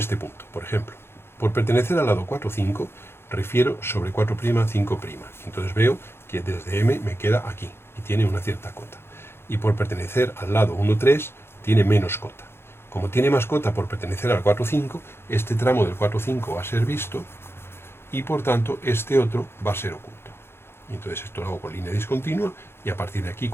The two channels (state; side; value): late; right; 0.12 ms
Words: punto, por ejemplo. Por pertenecer al lado 4, 5, refiero sobre 4', 5'. Entonces veo que desde M me queda aquí, y tiene una cierta cota. Y por pertenecer al lado 1, 3, tiene menos cota. Como tiene más cota por pertenecer al 4, 5, este tramo del 4, 5 va a ser visto, y por tanto este otro va a ser oculto. Y entonces esto lo hago con línea discontinua, y a partir de aquí